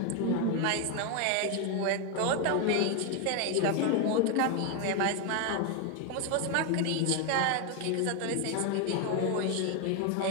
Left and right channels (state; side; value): different; both; correlation 0.01